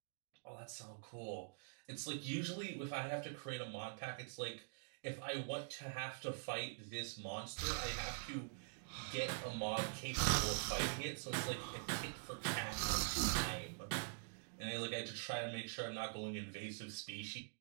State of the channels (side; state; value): left; silent; digital silence